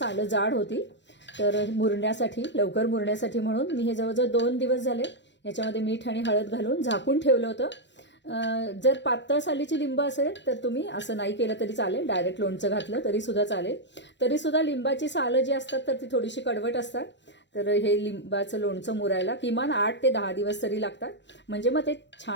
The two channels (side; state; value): right; late; 0.52 ms